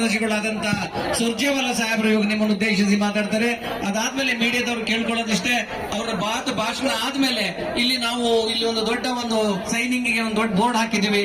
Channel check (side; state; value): both; identical; correlation 1.00